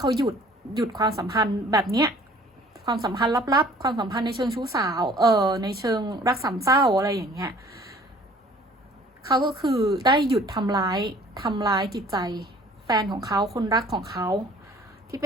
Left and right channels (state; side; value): normal; both; correlation 0.52